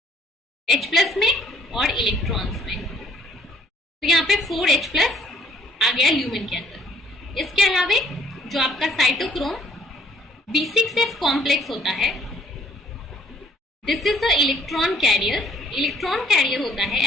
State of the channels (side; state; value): both; normal; correlation 0.62